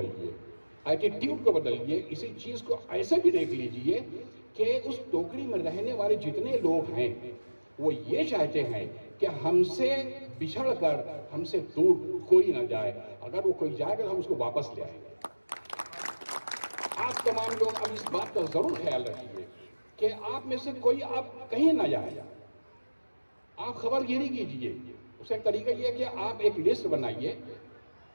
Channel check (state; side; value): inverted; both; correlation -1.00